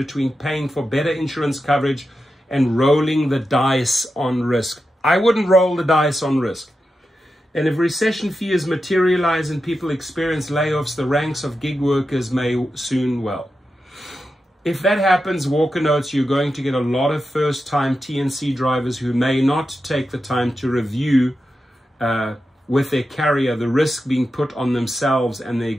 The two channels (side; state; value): both; normal; correlation 0.90